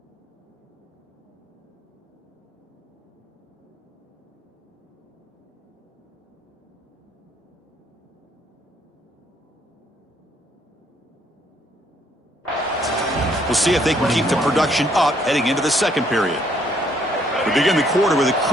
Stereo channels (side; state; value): both; normal; correlation 0.68